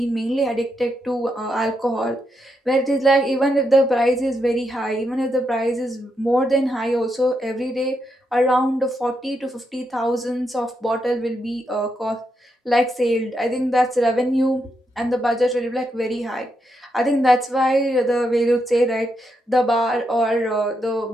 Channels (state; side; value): normal; both; correlation 0.82